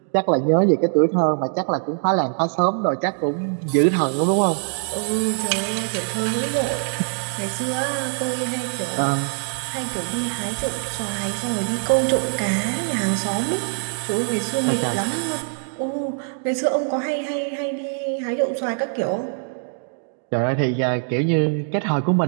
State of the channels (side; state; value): left; silent; digital silence